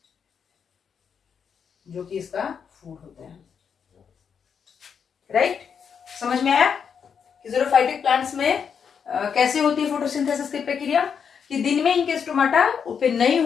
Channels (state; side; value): quieter; right; 6.9 dB